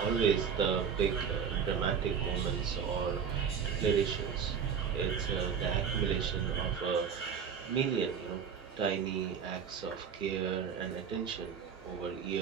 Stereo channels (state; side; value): quieter; left; 7.0 dB